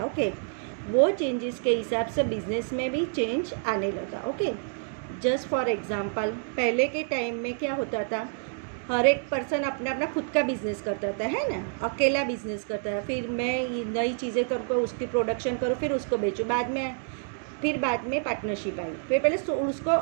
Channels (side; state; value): left; silent; 59 dB below the other